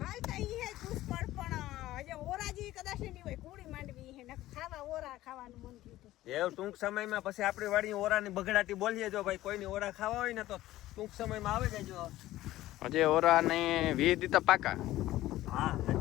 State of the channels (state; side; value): quieter; right; 15.6 dB